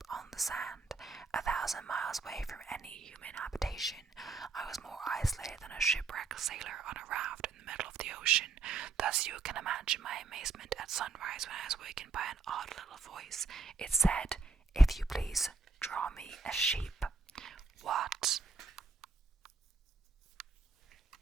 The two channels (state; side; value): quieter; left; 4.1 dB